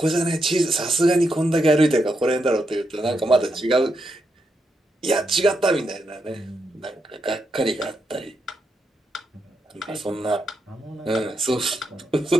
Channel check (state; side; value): normal; both; correlation 0.83